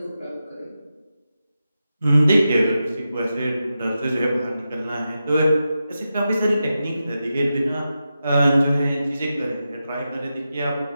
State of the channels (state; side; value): inverted; both; correlation -0.90